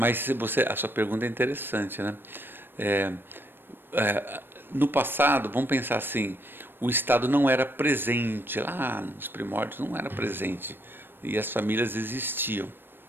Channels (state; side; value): late; left; 0.098 ms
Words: a sua pergunta é interessante, né? No passado, vamos pensar assim, o Estado não era presente, lá nos primórdios não era presente, e as famílias existiam.